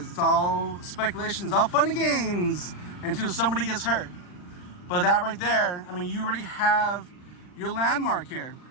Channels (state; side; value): late; right; 40 ms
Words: It's all speculation, it's all fun and games until somebody gets hurt. But that right there, I mean, you already have your landmark here.